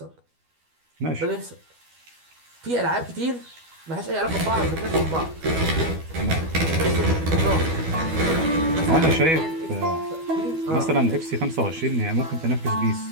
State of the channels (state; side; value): late; left; 12 ms